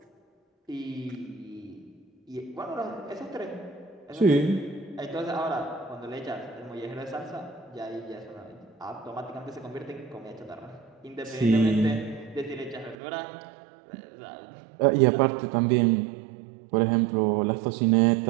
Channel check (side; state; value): left; drops out; at 13.0 s